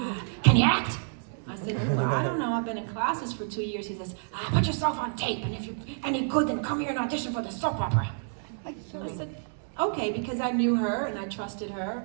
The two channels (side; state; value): left; silent; digital silence